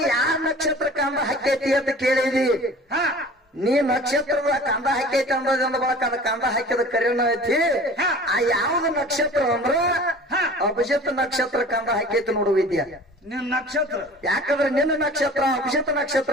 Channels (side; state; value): both; normal; correlation 0.43